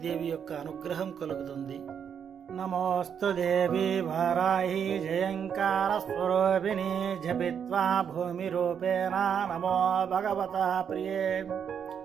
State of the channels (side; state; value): left; quieter; 7.8 dB